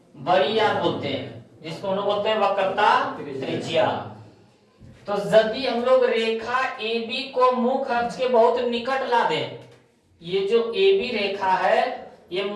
बड़ी r बोलते हैं, जिसको हम लोग बोलते हैं वक्रता त्रिज्या। तो यदि हम लोग रेखा AB को मुख अक्ष के बहुत निकट ला दें, ये जो AB रेखा है ये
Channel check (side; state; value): both; identical; correlation 1.00